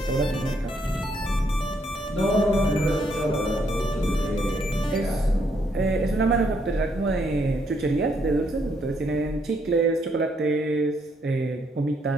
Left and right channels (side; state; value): both; normal; correlation 0.73